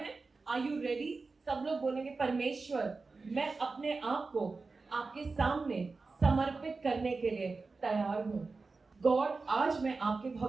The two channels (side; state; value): left; quieter; 4.0 dB